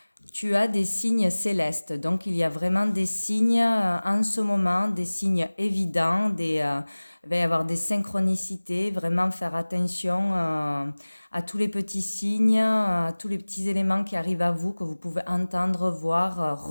Tu as des signes célestes, donc il y a vraiment des signes en ce moment, des signes évidents, il va y avoir des synchronicités, vraiment faire attention à tous les petits signes, à tous les petits éléments qui arrivent à vous, que vous pouvez entendre, voir,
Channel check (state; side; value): inverted; both; correlation -1.00